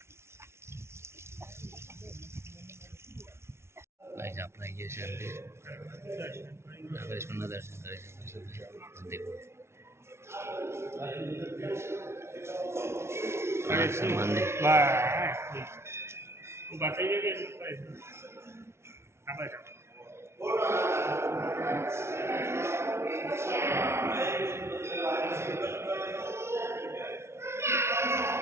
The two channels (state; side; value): late; left; 0.13 ms